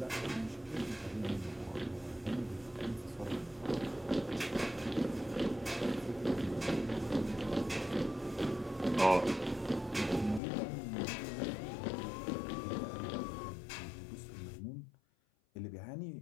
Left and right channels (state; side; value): drops out; right; at 10.4 s